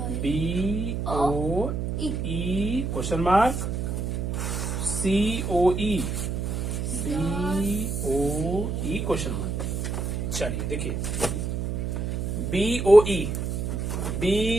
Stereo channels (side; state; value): right; noise; hum, 2 dB below the sound